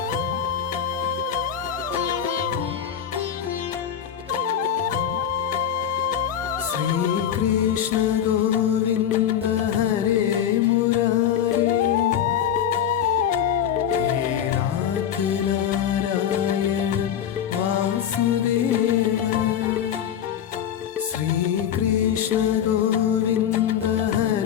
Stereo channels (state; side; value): quieter; right; 9.3 dB